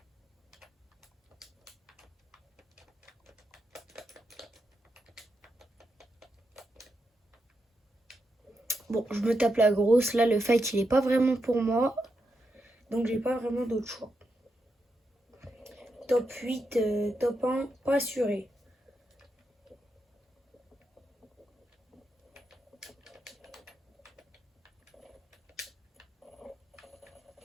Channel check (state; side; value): normal; both; correlation 0.84